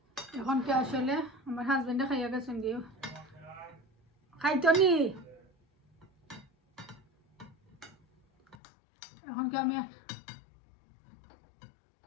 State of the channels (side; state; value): right; drops out; at 8.6 s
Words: এখন কি আসলে আমার হাজবেন্ডে খাইয়া গেছেন গিয়ে খাইতো নি এখন কি আমি